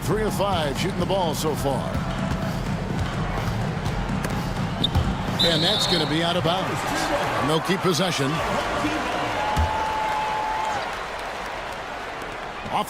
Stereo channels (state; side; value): identical; both; correlation 1.00